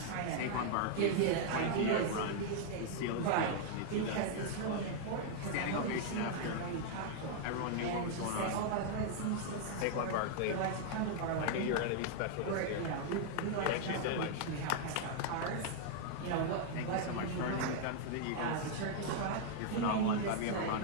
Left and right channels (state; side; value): different; both; correlation -0.01